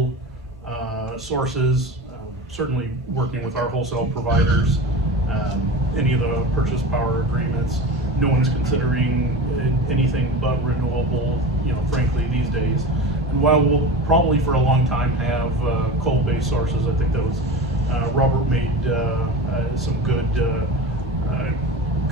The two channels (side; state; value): both; normal; correlation 0.29